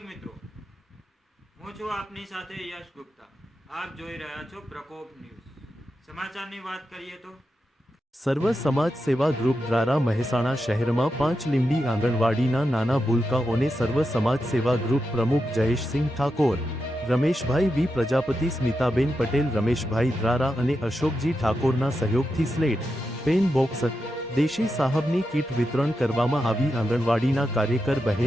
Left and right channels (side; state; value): both; normal; correlation 0.88